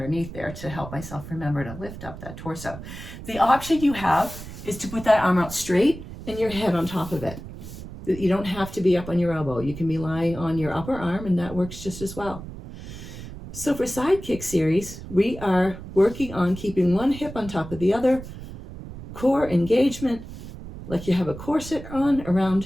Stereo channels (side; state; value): right; noise; rumble, 12 dB below the sound